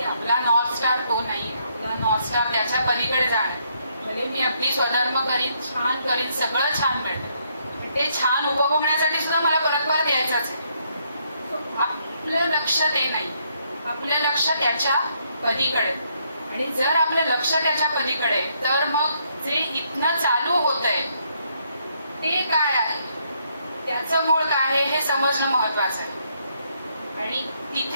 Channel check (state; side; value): inverted; both; correlation -0.72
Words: आपला नॉर्थ स्टार तो नाही आपला नॉर्थ स्टार त्याच्या पलीकडे जाणार. भले मी आपली स्वधर्म करीन छान करीन सगळं छान मिळतं ते छान उपभोगण्यासाठी सुद्धा मला परत यायचंच आहे. आपलं लक्ष ते नाही आपलं लक्ष त्याच्या पलीकडे. आणि जर आपलं लक्ष त्याच्या पलीकडे तर मग जे इथनं चालू होत आहे ते काय आहे त्याचं मूळ काय आहे हे समजणं महत्वाचं आहे. आणि